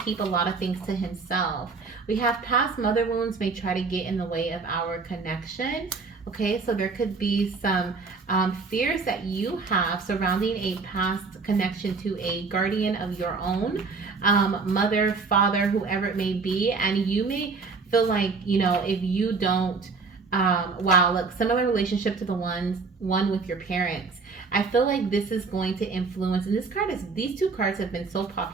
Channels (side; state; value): left; quieter; 4.5 dB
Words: a lot of things to himself. We have, past mother wounds may try to get in the way of our connection. Okay, so there could be some fears that you have surrounding a past connection to a guardian of your own, mother, father, whoever it may be, and you may feel like, if you don't, wow, look, similar relationship to the one with your parents. I feel like this is going to influence, and these two cards have been so